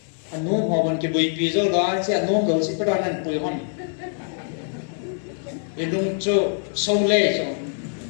anh nuông họ vẫn cái bụi bì rồi đó sẽ nuông đầu sẽ bắt đầu ăn bụi hòn vì nuông cho sâu lê rồi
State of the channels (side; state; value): right; silent; digital silence